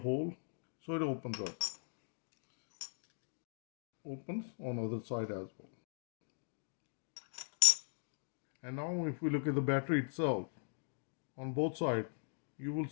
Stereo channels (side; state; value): right; silent; digital silence